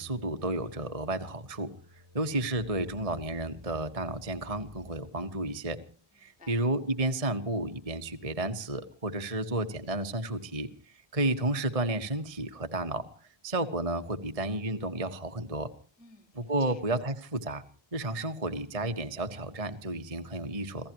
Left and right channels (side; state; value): left; late; 1.6 ms